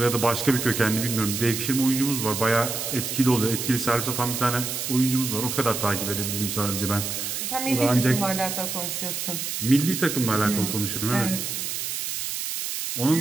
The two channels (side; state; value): right; noise; hiss, 3 dB below the sound